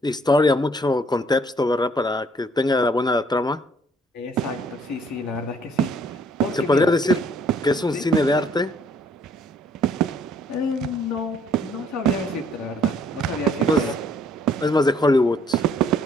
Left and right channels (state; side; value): normal; both; correlation 0.63